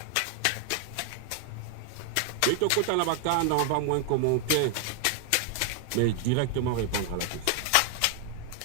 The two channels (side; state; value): both; different; correlation 0.00